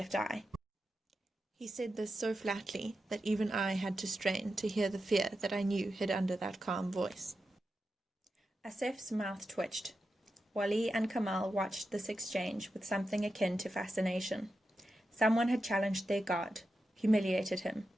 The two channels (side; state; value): both; normal; correlation 0.89